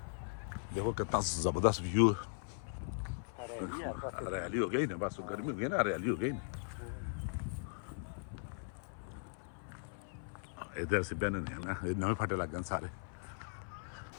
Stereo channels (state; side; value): silent; right; 52 dB below the other